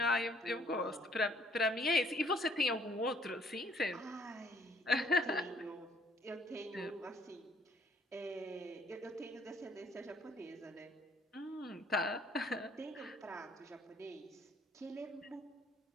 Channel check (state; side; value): normal; both; correlation 0.63